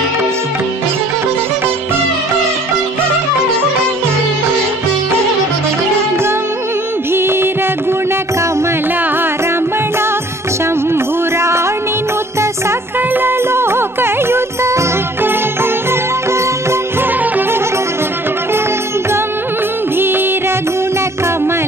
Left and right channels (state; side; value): normal; both; correlation 0.55